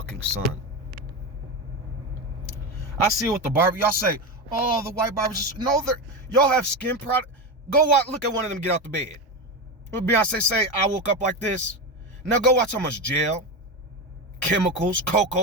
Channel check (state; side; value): normal; both; correlation 0.17